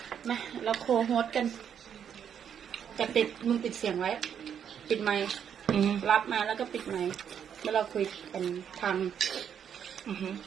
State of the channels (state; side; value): quieter; left; 8.4 dB